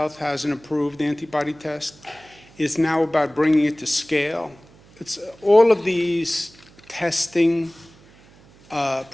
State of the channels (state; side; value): noise; right; hum, 26 dB below the sound